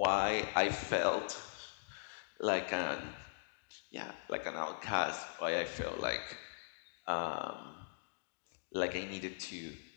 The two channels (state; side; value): silent; right; digital silence